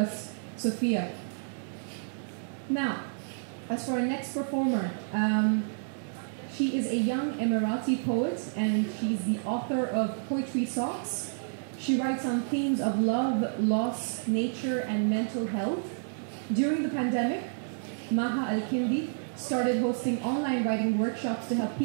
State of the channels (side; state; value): left; silent; digital silence